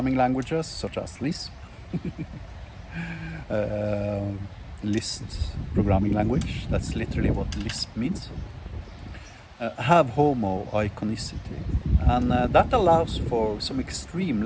languages, such as Lisp, Lisp programming language, that's literally what Lisp means, have homo iconicity, and that allows for some extreme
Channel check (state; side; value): identical; both; correlation 1.00